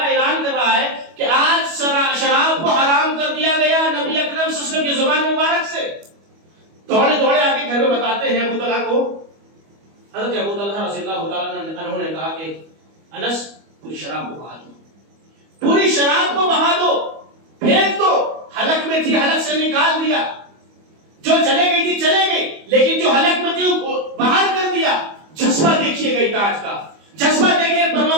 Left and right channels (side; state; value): left; late; 25 ms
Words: اعلان کر رہا ہے کہ آج شراب کو حرام کر دیا گیا نبی اکرم صلی اللہ علیہ وسلم کی زبان مبارک سے۔ دوڑے آ کے گھر میں بتاتے ہیں ابو طلحہ کو۔ حضرت ابو طلحہ رضی اللہ تعالیٰ عنہ نے کہا کہ انس پوری شراب کو بہا دو، پوری شراب کو بہا دو، پھینک دو، حلق میں تھی حلق سے نکال دیا، جو چلے گئی تھی چلے گئی، لیکن جو حلق میں تھی باہر کر دیا۔ جذبہ دیکھیے گئی تاج کا، جذبہ دیکھیے